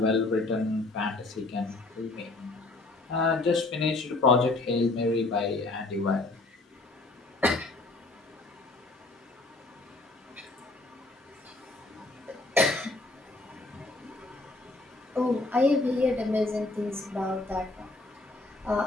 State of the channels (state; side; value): quieter; right; 3.1 dB